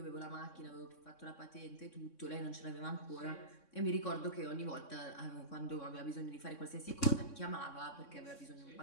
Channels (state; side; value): late; right; 3.6 ms